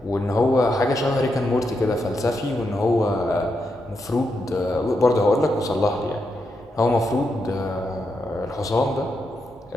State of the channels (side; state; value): both; normal; correlation 0.83